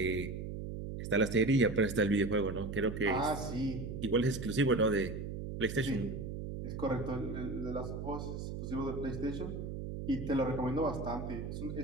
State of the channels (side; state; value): right; noise; hum, 6 dB below the sound